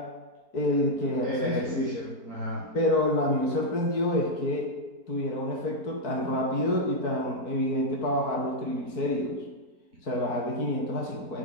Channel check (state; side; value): late; right; 4.4 ms